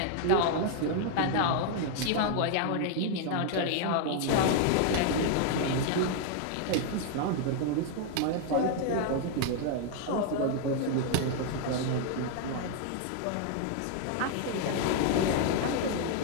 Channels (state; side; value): different; both; correlation 0.00